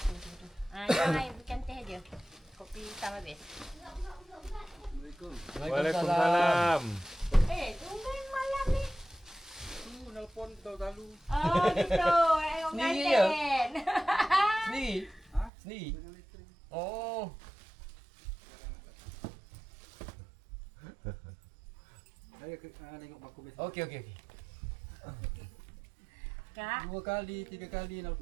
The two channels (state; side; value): drops out; left; at 15.5 s